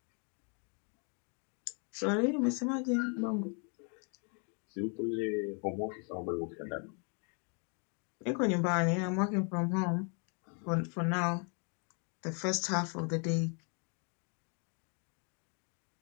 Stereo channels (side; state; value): right; quieter; 38.7 dB